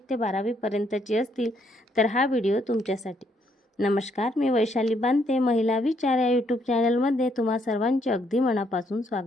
ते 12वी पर्यंतची असतील तर हा व्हिडिओ तुमच्यासाठी। नमस्कार, मी वैशाली बांते, महिला विचार या यूट्यूब चॅनलमध्ये तुम्हा सर्वांचे अगदी मनापासून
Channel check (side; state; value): both; normal; correlation 0.72